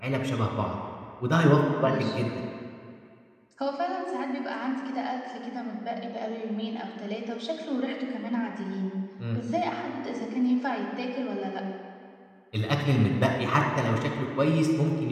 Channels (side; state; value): both; identical; correlation 1.00